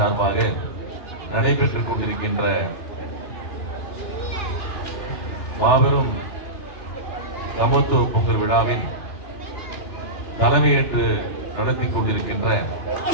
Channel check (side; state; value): right; late; 3.3 ms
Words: நடைபெற்றுக் கொண்டிருக்கின்ற மாபெரும் சமத்துவ பொங்கல் விழாவின் தலைமையேற்று நடத்தி கொண்டிருக்கின்ற